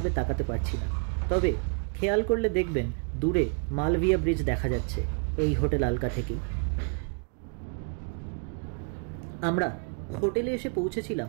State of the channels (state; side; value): quieter; left; 39.9 dB